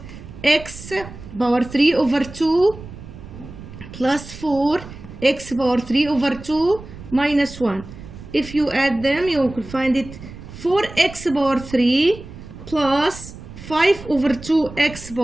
x power 3 over 2 plus 4 x power 3 over 2 minus 1. If you add them, you will find it 4x power 3 plus 5 over 2x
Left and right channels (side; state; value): right; noise; rumble, 15 dB below the sound